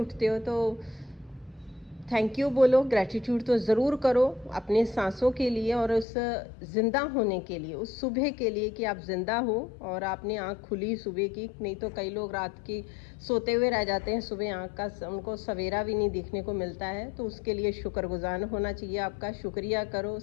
हो तो थैंक यू बोलो, ग्रैटिट्यूड तो ज़रूर करो अपने सांसों के लिए और उस ज़िंदा होने के लिए, उस सुबह के लिए कि आप ज़िंदा हो और आपने आँख खुली सुबह की। नहीं तो कई लोग रात की सोते हुए रह जाते हैं, सुबह आँख का उनको सवेरा भी नहीं देखने को मिलता है। तो उसके लिए शुक्रगुजार होना चाहिए आपका। शुक्रिया करो,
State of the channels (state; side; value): drops out; right; at 6.1 s